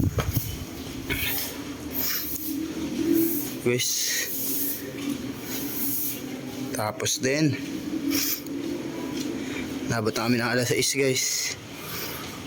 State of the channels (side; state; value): both; identical; correlation 1.00